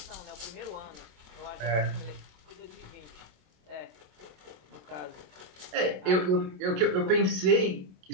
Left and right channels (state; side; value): late; left; 27 ms